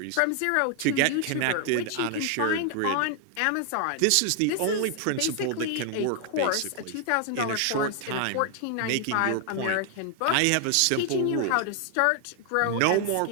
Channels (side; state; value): both; different; correlation 0.00